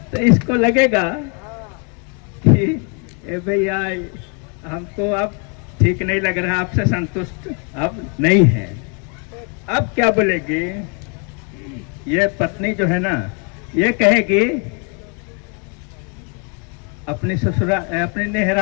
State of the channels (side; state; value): right; quieter; 37.4 dB